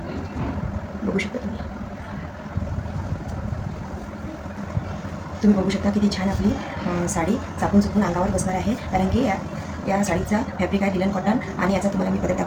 बघू शकता तुम्ही बघू शकता किती छान आपली साडी चापून चुकून अंगावर बसणार आहे. कारण की या साडीचा फॅब्रिक आहे लिनन कॉटन आणि याचा तुम्हाला मी पदर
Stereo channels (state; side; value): identical; both; correlation 1.00